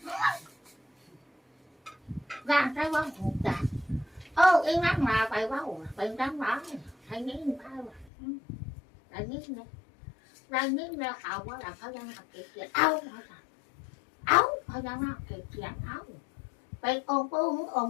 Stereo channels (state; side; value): drops out; right; at 8.1 s